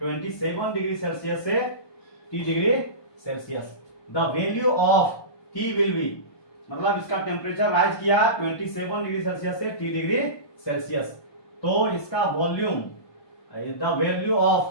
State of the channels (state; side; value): late; right; 1.2 ms